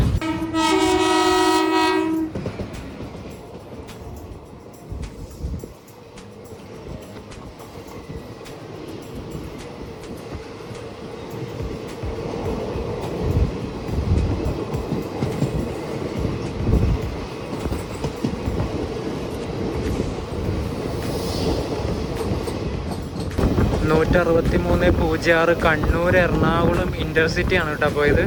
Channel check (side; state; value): both; identical; correlation 1.00